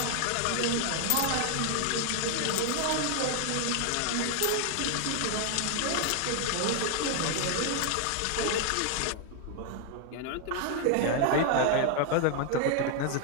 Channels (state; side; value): different; both; correlation 0.00